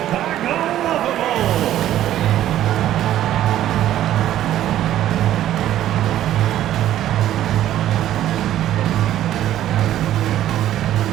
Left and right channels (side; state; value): left; quieter; 12.5 dB